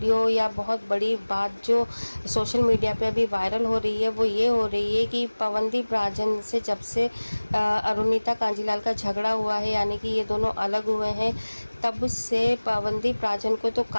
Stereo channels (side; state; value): both; inverted; correlation -1.00